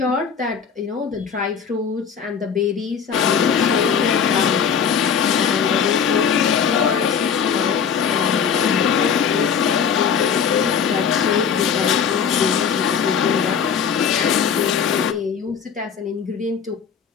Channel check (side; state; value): right; quieter; 7.1 dB